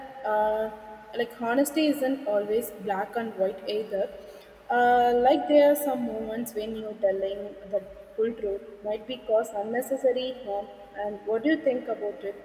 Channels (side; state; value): both; identical; correlation 1.00